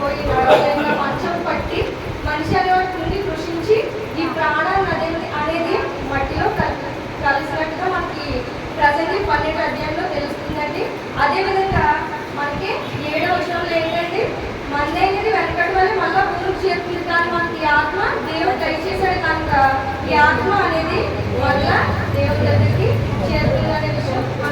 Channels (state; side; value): identical; both; correlation 1.00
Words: నడవలేక మంచం పట్టి మనిషి అనేవాడు కృంగి కృషించి ఈ ప్రాణాన్ని అనేది మట్టిలో కలిసినట్టుగా మనకి ప్రసంగి 12వ అధ్యాయంలో తెలుస్తుందండి. అదేవిధంగా మనకి 7వ వచనంలో ఏంటంటే మన్నైనది వెనకటి వల్ల మళ్ళా భూమికి చేరుతుంది. కానీ మనకి ఈ ఆత్మ దేవుడు దయచేశాడు కనుక ఈ ఆత్మ అనేది మళ్ళా దేవుడి దగ్గరికి చేరుతుంది అనే విషయం